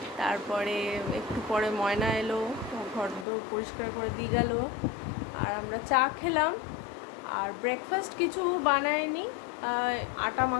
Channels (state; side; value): drops out; right; at 3.2 s